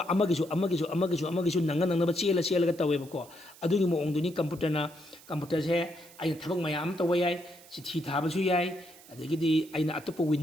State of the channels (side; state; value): right; noise; hiss, 22 dB below the sound